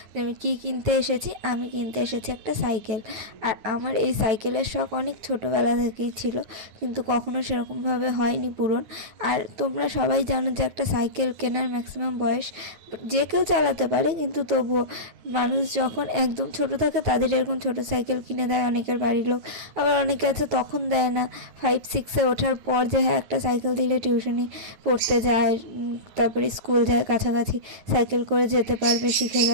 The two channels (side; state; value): left; late; 9.5 ms